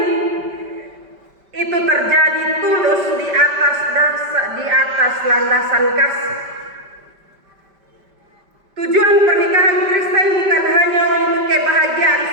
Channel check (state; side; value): late; left; 5.1 ms